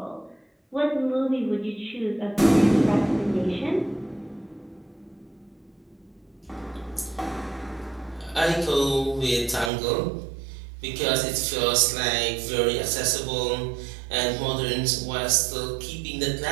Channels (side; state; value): left; drops out; at 9.7 s